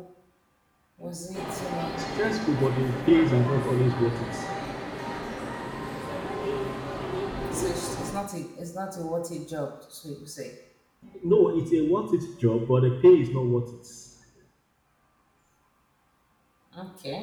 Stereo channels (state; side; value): identical; both; correlation 1.00